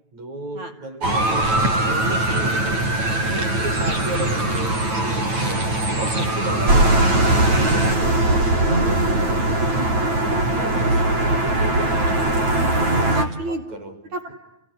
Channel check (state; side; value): late; left; 9.1 ms